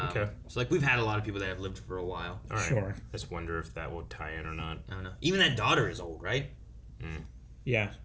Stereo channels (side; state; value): both; identical; correlation 1.00